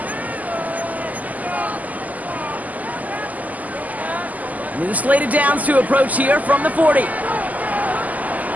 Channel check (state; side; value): late; left; 0.078 ms